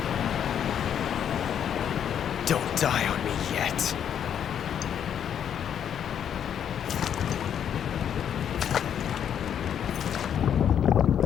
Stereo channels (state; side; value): quieter; right; 8.9 dB